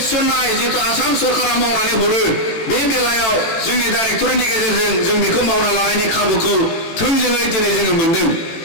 थिसननाय जितु आसाम सरकारा मावनानै हरो बे बेलायाव जोंनि डाइरेक्टरेटनि गेजेरजों जों बेखौ मावना लानायनि खाबुखौ थोंजोङै दिनै जोङो मोनदों।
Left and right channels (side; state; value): right; late; 18 ms